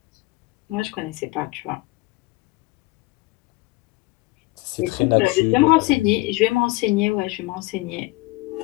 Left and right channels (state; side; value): quieter; right; 22.4 dB